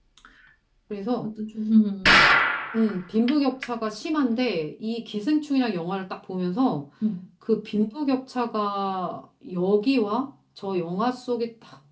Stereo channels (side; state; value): both; identical; correlation 1.00